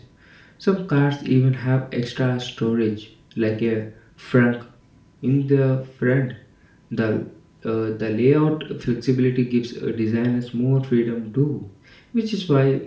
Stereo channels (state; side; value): identical; both; correlation 1.00